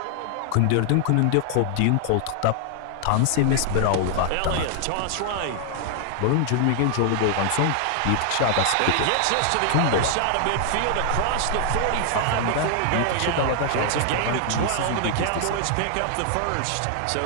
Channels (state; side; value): different; both; correlation 0.00